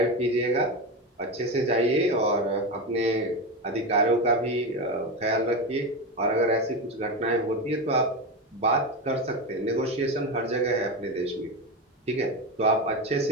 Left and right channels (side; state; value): both; normal; correlation 0.17